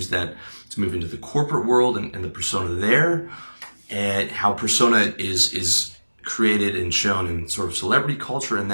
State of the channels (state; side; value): inverted; both; correlation -1.00